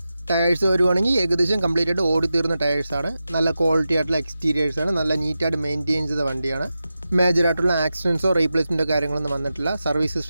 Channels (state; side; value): inverted; both; correlation -0.92